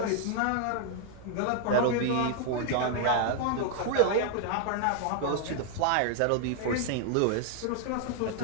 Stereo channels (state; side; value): different; both; correlation 0.00